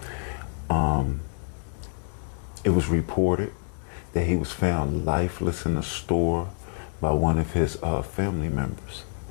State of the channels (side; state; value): right; silent; digital silence